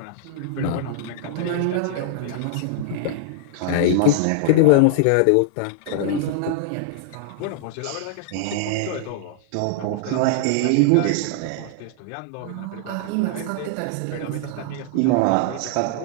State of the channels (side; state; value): both; different; correlation -0.01